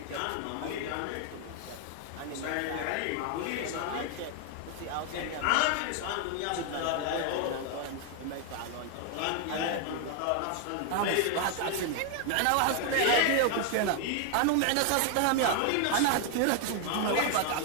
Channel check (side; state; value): both; different; correlation 0.00